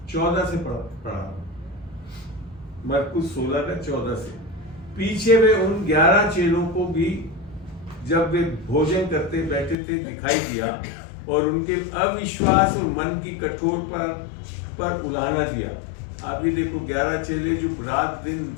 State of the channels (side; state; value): right; drops out; at 9.8 s